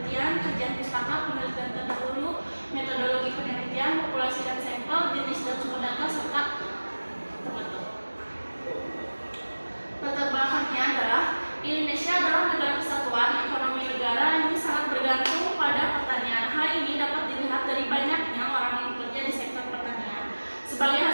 kajian pustaka, penelitian terdahulu, metodologi penelitian, populasi dan sampel, jenis dan sumber data, serta penutup. Latar belakangnya adalah Indonesia adalah negara kesatuan. Ekonomi negara ini sangat bergantung pada pertanian. Hal ini dapat dilihat dari banyaknya orang yang bekerja di sektor pertanian. Sebagai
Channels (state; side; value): inverted; both; correlation -1.00